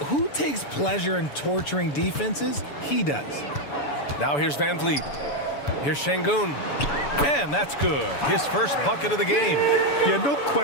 who takes pleasure in torturing defenses? He does. Now here's Van Vliet. Here's Şengün. And that's good. His first bucket of the game. Yeah, no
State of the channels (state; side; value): late; right; 7.0 ms